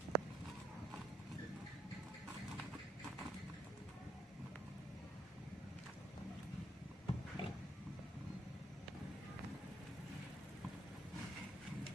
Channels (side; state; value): both; normal; correlation 0.71